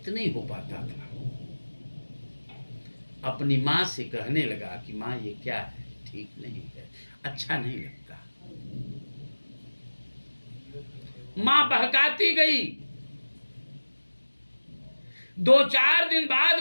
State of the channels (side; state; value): both; inverted; correlation -1.00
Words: नहीं हो पाता था। अपनी माँ से कहने लगा कि माँ ये क्या है, ठीक नहीं है, अच्छा नहीं लगता। माँ बहकाती गई। 2-4 दिन बाद